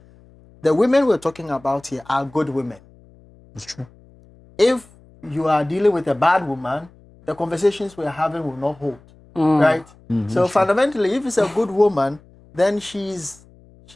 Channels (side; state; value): left; noise; hum, 26 dB below the sound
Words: the women we're talking about here are good women. It's true. If you are dealing with a bad woman, the conversations we're having will not hold, right? So fundamentally, if it's a good woman, then she's